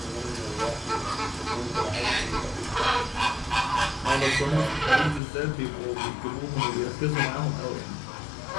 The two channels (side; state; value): right; drops out; at 5.2 s